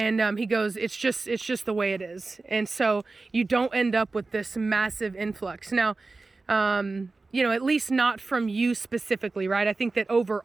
he goes, it's just the way it is. And so you don't end up with this massive influx. Now, you know, at least not from you specifically, right? I think that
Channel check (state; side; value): quieter; left; 3.6 dB